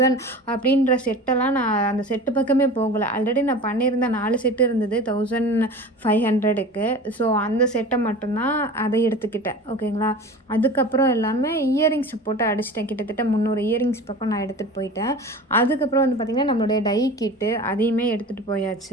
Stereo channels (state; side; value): normal; both; correlation 0.36